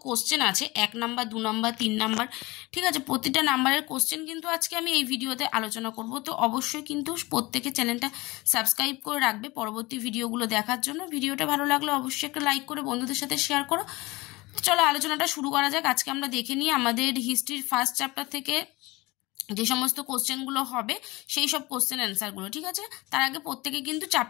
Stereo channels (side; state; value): right; quieter; 22.2 dB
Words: কোশ্চেন আছে 1 নাম্বার 2 নাম্বার 3 নাম্বার, ঠিক আছে, প্রতিটা নাম্বারের কোশ্চেন কিন্তু আজকে আমি এই ভিডিওতে আলোচনা করব। তো অবশ্যই কিন্তু প্রত্যেকে চ্যানেলটা সাবস্ক্রাইব করে রাখবে পরবর্তী ভিডিওগুলো দেখার জন্য। ভিডিওটা ভালো লাগলে অবশ্যই একটা লাইক করে বন্ধুদের সাথে শেয়ার করো। চলো আলোচনাটা শুরু করা যাক। আজকে আমরা দেখে নিই আমাদের হিস্ট্রির ফার্স্ট চ্যাপ্টার থেকে যে সমস্ত কোশ্চেনগুলো হবে সেই সব কোশ্চেন অ্যান্সারগুলো, ঠিক আছে। তার আগে প্রত্যেকে কিন্তু